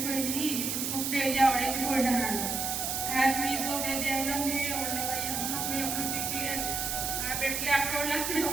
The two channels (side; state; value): right; noise; hiss, 1 dB below the sound